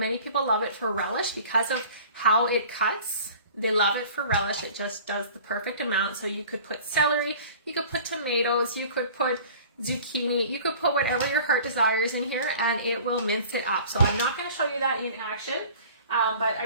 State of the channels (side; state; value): both; inverted; correlation -0.45